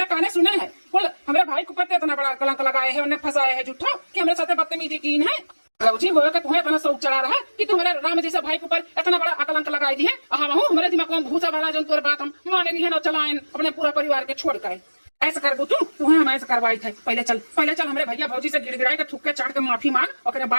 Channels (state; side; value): inverted; both; correlation -1.00